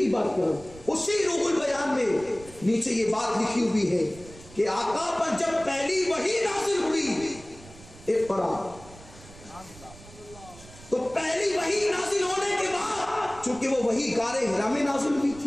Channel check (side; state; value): right; noise; rumble, 20 dB below the sound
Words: بات کرو، اسی روح البیان میں نیچے یہ بات لکھی ہوئی ہے کہ آقا پر جب پہلی وحی نازل ہوئی اقرا، تو پہلی وحی نازل ہونے کے بعد چونکہ وہ وحی غار حرا میں نازل ہوئی